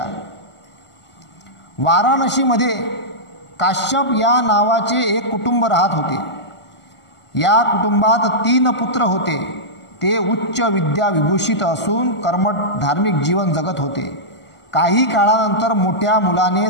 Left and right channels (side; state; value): right; late; 1.4 ms